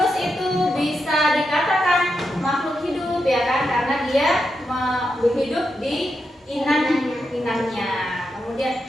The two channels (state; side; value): normal; both; correlation 0.85